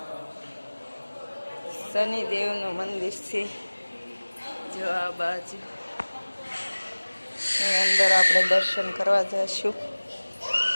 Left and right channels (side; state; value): both; inverted; correlation -1.00